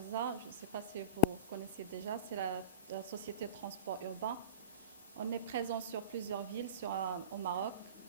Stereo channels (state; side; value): inverted; both; correlation -0.32